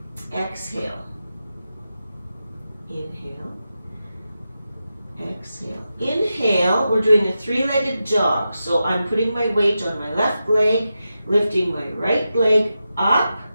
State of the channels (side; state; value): both; inverted; correlation -0.90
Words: exhale, inhale, exhale. Inhale, we're doing a 3-legged jog. So I'm putting my weight on my left leg, lifting my right leg up,